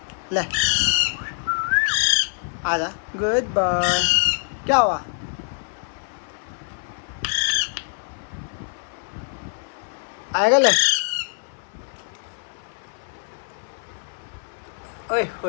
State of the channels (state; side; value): silent; right; 56 dB below the other